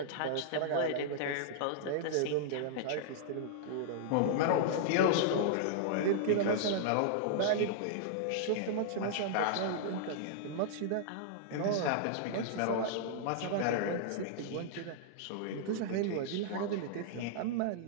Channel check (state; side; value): different; both; correlation -0.01